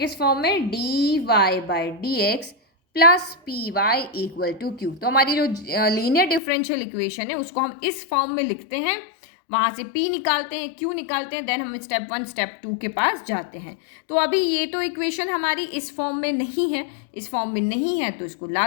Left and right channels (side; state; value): right; drops out; at 6.4 s